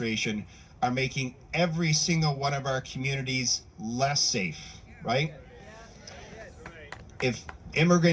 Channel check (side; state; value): both; identical; correlation 1.00